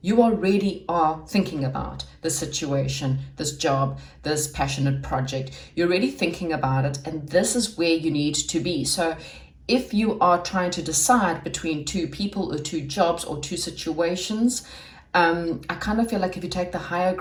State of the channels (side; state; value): both; identical; correlation 1.00